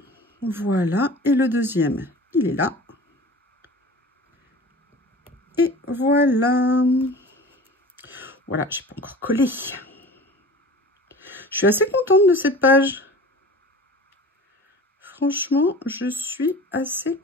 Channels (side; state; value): both; normal; correlation 0.39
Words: Voilà. Et le deuxième, il est là. Et voilà. Voilà, j'ai pas encore collé. Je suis assez contente de cette page. Franchement, je suis assez